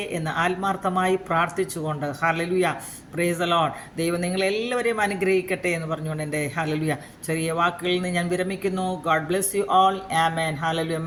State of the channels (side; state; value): both; identical; correlation 1.00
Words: എന്ന് ആത്മാർത്ഥമായി പ്രാർത്ഥിച്ചുകൊണ്ട് ഹല്ലേലൂയ. Price the Lord. ദൈവം നിങ്ങളെല്ലാവരെയും അനുഗ്രഹിക്കട്ടെ എന്ന് പറഞ്ഞുകൊണ്ട് എൻ്റെ ഹല്ലേലൂയ ചെറിയ വാക്കുകളിൽ നിന്ന് ഞാൻ വിരമിക്കുന്നു. God bless you all. ആമേൻ. ഹല്ലേലൂയ.